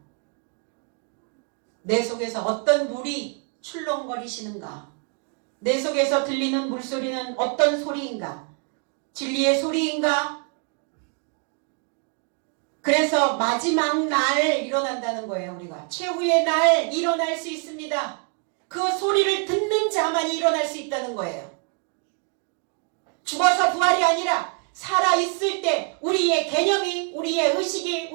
내 속에서 어떤 물이 출렁거리시는가? 내 속에서 들리는 물소리는 어떤 소리인가? 진리의 소리인가? 그래서 마지막 날 일어난다는 거예요. 우리가 최후의 날 일어날 수 있습니다. 그 소리를 듣는 자만이 일어날 수 있다는 거예요. 죽어서 부활이 아니라 살아있을 때 우리의 개념이, 우리의 의식이,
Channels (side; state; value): left; quieter; 38.5 dB